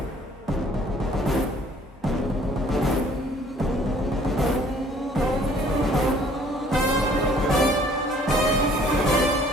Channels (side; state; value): both; normal; correlation 0.57